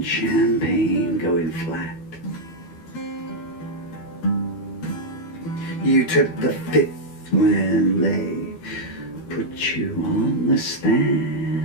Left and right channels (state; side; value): late; right; 12 ms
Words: champagne going flat. You took the fifth when they put you on the